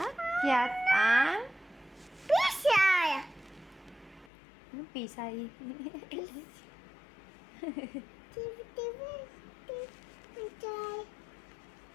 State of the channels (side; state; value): right; drops out; at 4.3 s